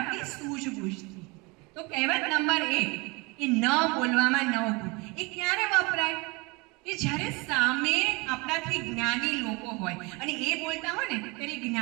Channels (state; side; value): quieter; left; 26.6 dB